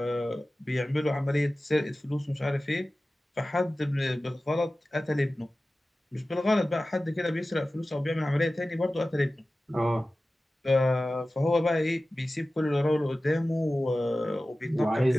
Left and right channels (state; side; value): normal; both; correlation 0.96